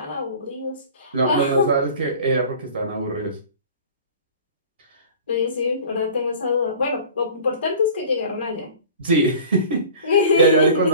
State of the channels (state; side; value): inverted; both; correlation -0.43